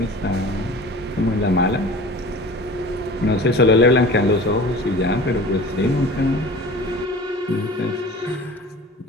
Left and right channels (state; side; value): normal; both; correlation 0.40